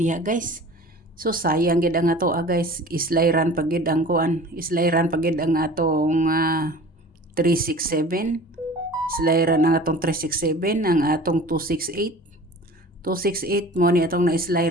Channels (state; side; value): normal; both; correlation 0.42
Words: guys. So sayang gid ang ato guys, islayran pagid ang kuan, islayran pagid ang atong 367. Islayran ang atong 367, ang atong 268. 268 mo ni atong